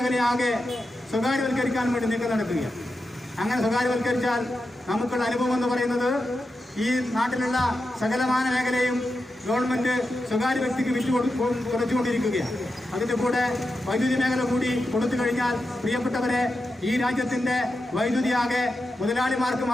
സ്വകാര്യവൽക്കരിക്കാൻ വേണ്ടി നീക്കം നടക്കുകയാണ്. അങ്ങനെ സ്വകാര്യവൽക്കരിച്ചാൽ നമുക്കുള്ള അനുഭവം എന്ന് പറയുന്നത് ഈ നാട്ടിലുള്ള സകലമാന മേഖലയും ഗവൺമെന്റ് സ്വകാര്യ വ്യക്തിക്ക് കുറച്ചുകൊണ്ടിരിക്കുകയാണ്. അതിന്റെ കൂടെ വൈദ്യുതി മേഖല കൂടി കൊടുത്തു കഴിഞ്ഞാൽ പ്രിയപ്പെട്ടവരെ, ഈ രാജ്യത്തിന്റെ വൈദ്യുതിയാകെ മുതലാളിമാർക്ക്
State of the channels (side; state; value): both; normal; correlation 0.89